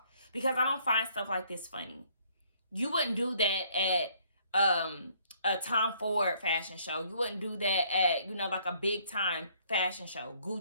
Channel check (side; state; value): both; inverted; correlation -0.64